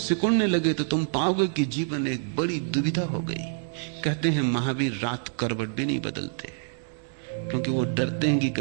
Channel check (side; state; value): left; silent; 60 dB below the other